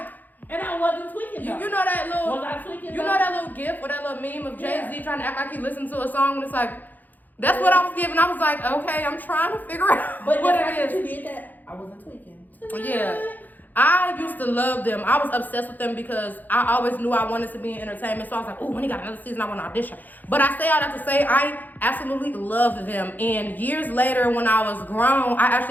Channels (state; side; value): late; right; 0.084 ms